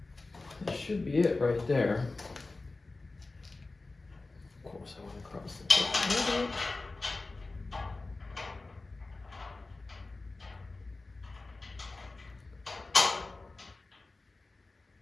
That should be it right there. Of course, I want to cross the top.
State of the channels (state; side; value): quieter; right; 3.4 dB